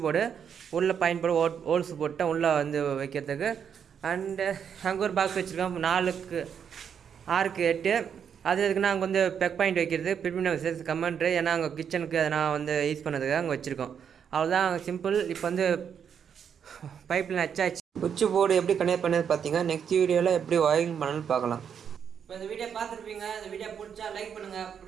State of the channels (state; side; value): quieter; left; 7.7 dB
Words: போர்டு உள்ளே பாயிண்ட் போர்டு ஹோல்ஸ் போட்டால் உள்ளே வந்து வைக்கிறதுக்கு. அண்டு அங்கே ஒரு பாக்ஸ் வச்சுருக்கேன் 4க்கு 6க்கு 8. அது எதுக்குன்னா அங்கே வந்து பெக் பாயிண்ட் வைக்கிறது, பிரிமினல் கமெண்ட்ரு, ஏன்னா அங்கே கிச்சனுக்கு அதை நான் வந்து யூஸ் பண்ணதுக்கு அங்கே வச்சுருக்கோம். அவ்வளோதான், சிம்பிள். இப்போ வந்து பைப்பில் வச்சாச்சு. சுவிட்ச் போர்டு எப்படி கனெக்ட் பண்ணது பார்த்தீங்க. நெக்ஸ்ட் வீடியோவில் எப்படி ஒயரிங் பண்ணணும்னு பார்க்கலாம். இப்போ இந்த வீடியோ பார்த்துருப்பீங்க. இந்த வீடியோ பிடிச்சா லைக் பண்ணுங்கள்,